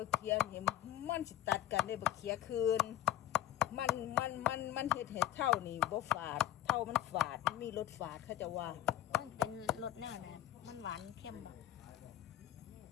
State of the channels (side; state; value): right; quieter; 12.9 dB